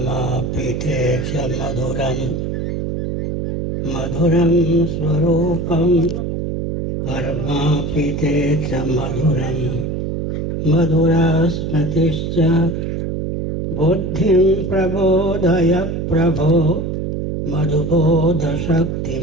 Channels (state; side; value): noise; right; hum, 3 dB below the sound